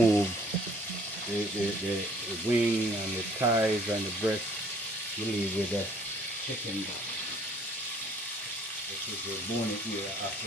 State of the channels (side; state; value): both; normal; correlation 0.57